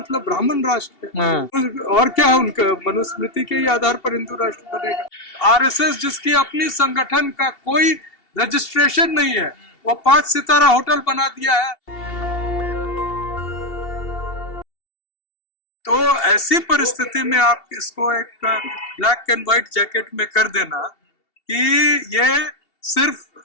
ब्राह्मण राष्ट्र है, और क्या है उनका मनुस्मृति के ही आधार पर हिंदू राष्ट्र बनेगा। आरएसएस जिसकी अपनी संगठन का कोई रजिस्ट्रेशन नहीं है, वो 5 सितारा होटल बना दिया है। तो ऐसी परिस्थिति में आप इसको एक ब्लैक एंड व्हाइट जैकेट में कर देना कि ये सिर्फ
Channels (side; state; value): right; late; 2.7 ms